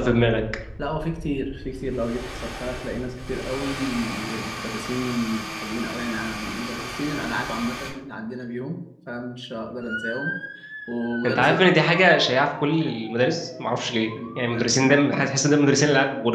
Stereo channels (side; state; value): both; identical; correlation 1.00